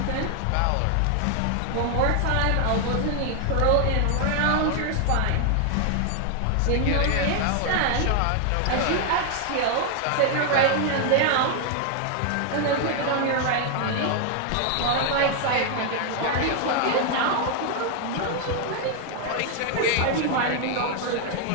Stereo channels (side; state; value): both; different; correlation 0.00